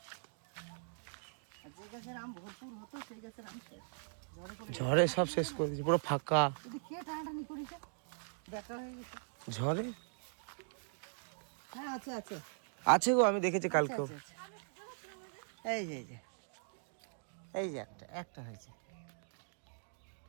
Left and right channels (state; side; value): silent; left; digital silence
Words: আর যে গাছের আম ভরপুর হতো সেই গাছের আম শেষ, ঝড়ে করে ঝড়ে সব শেষ করে দিয়েছে, পুরো ফাঁকা। যদি খেয়ে টানাটানি করেছে দেখা হয়ে গেছে। ঝড়ে হ্যাঁ আছে আছে আছে গো, আমি দেখেছি কালকেও। আছে, আছে। এই যে এই যে একটা একটা হয়েছে।